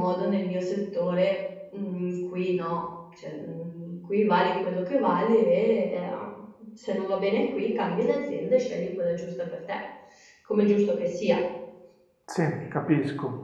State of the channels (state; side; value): identical; both; correlation 1.00